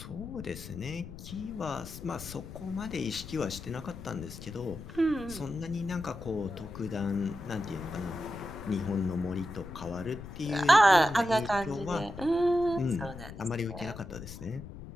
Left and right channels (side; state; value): left; noise; rumble, 12 dB below the sound